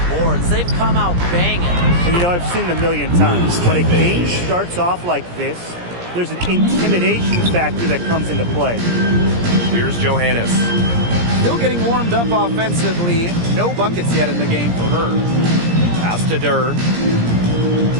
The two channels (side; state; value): left; late; 17 ms